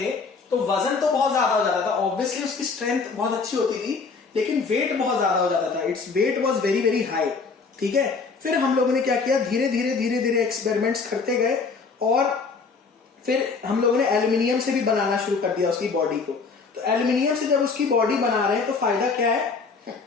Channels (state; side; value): quieter; right; 4.7 dB